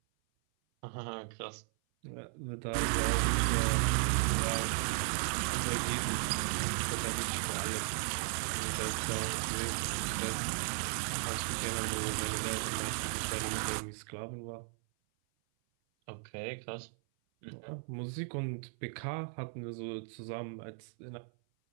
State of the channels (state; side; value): silent; left; 54 dB below the other